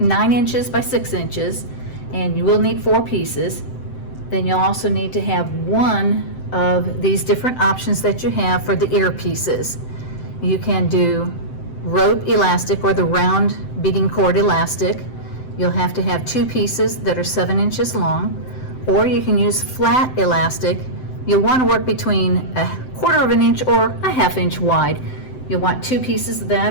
inches by 6 inches, and you will need 4 pieces. Then you'll also need to have one of these different options that you have for the ear pieces. You can do rope elastic or the round beading cord elastic. You'll have to have 2 pieces that are 7 inches long, or you can use flat elastic. You'll want to work between a 1/4 of an inch or a 1/2 inch wide. You'll want 2 pieces of that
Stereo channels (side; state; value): right; late; 7.8 ms